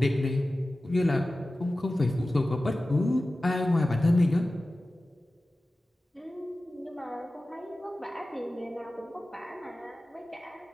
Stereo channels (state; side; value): normal; both; correlation 0.96